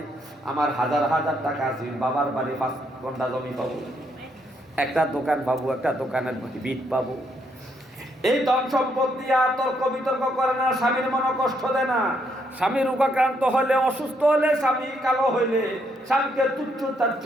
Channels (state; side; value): normal; both; correlation 0.74